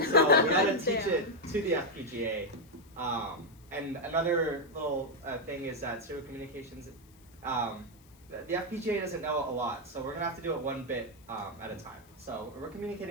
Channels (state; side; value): noise; left; hiss, 28 dB below the sound